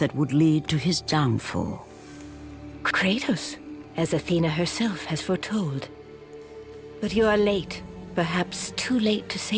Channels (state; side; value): identical; both; correlation 1.00